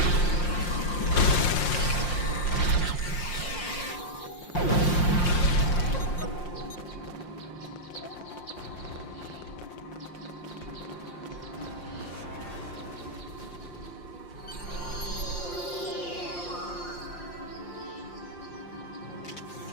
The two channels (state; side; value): late; right; 5.7 ms